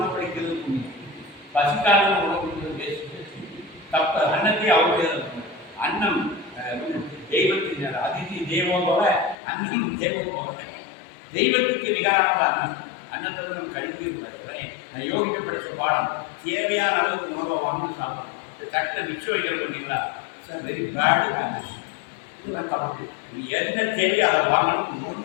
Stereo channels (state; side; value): drops out; right; at 9.3 s